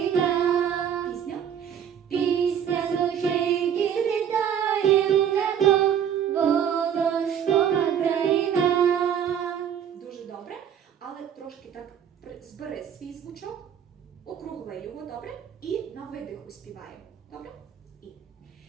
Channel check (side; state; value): left; quieter; 8.8 dB